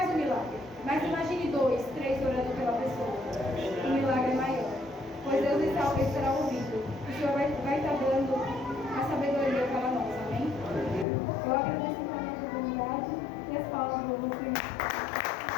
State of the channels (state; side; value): drops out; right; at 11.1 s